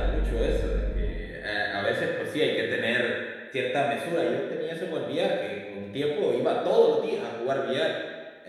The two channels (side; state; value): both; identical; correlation 1.00